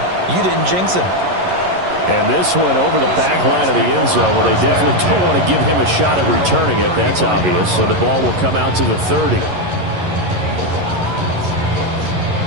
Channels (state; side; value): late; left; 11 ms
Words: You didn't jinx him. And this one over the back line of the end zone. Well, they definitely don't want to give him a shot at returning it. That's obvious. So the ball will come out to the 30.